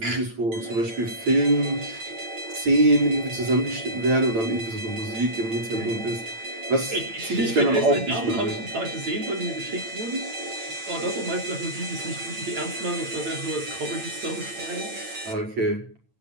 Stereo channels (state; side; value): late; left; 8.9 ms